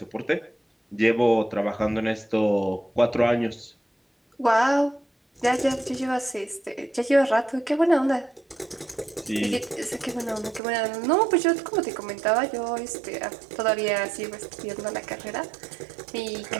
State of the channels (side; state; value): left; drops out; at 10.6 s